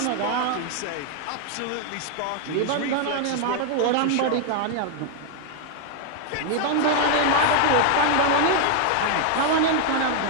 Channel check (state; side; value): different; both; correlation 0.00